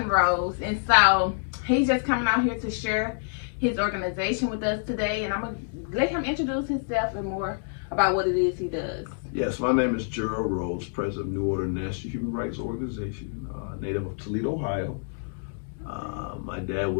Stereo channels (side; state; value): right; silent; digital silence